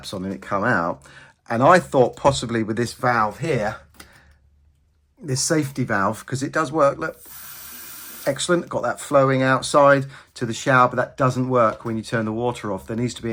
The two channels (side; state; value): both; identical; correlation 1.00